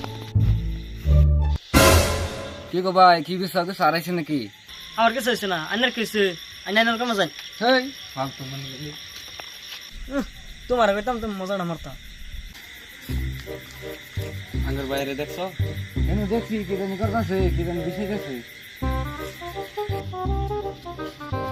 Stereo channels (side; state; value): both; identical; correlation 1.00